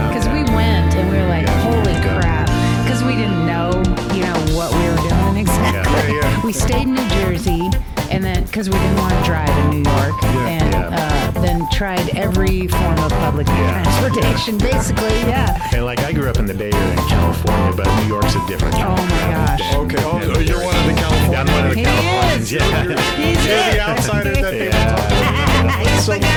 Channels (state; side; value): identical; both; correlation 1.00